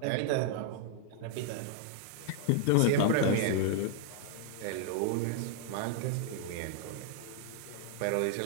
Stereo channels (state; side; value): different; both; correlation 0.00